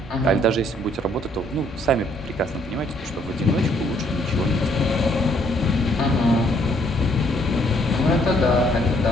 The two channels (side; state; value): both; normal; correlation 0.66